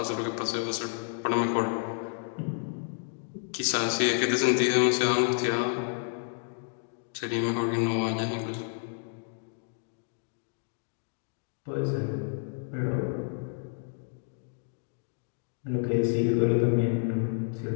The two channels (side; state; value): right; silent; digital silence